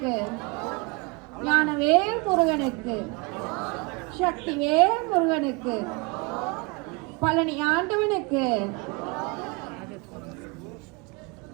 ஞானவேல் முருகனுக்கு சக்திவேல் முருகனுக்கு பழனி ஆண்டவனுக்கு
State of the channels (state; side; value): quieter; left; 29.3 dB